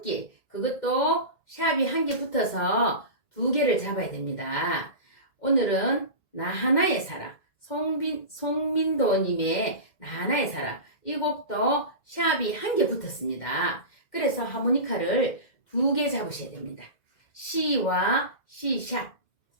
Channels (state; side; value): late; right; 2.0 ms